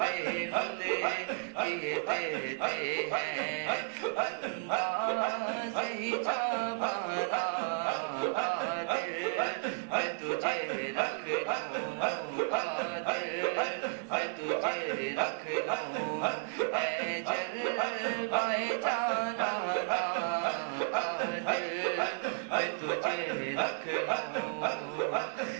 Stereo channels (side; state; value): left; silent; 56 dB below the other